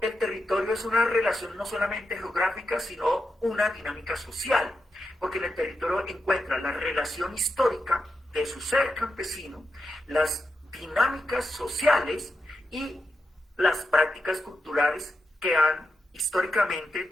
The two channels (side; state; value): both; normal; correlation 0.87